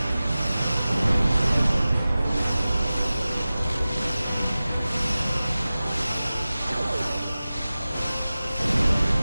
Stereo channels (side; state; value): both; inverted; correlation -0.96